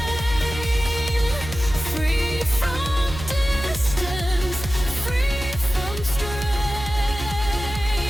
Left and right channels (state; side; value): noise; right; hum, 10 dB below the sound